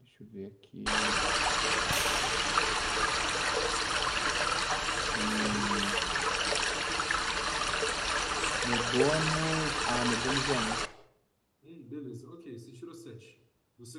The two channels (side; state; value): both; identical; correlation 1.00